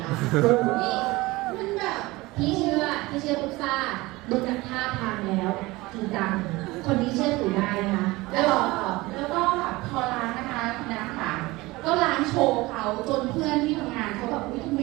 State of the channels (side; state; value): left; quieter; 21.0 dB